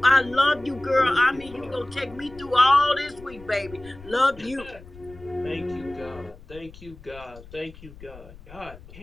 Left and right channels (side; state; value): left; noise; rumble, 19 dB below the sound